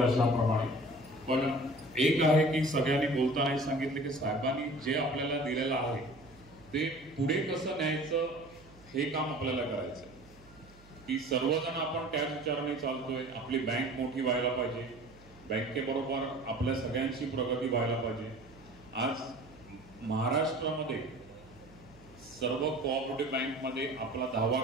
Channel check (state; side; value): noise; right; hum, 24 dB below the sound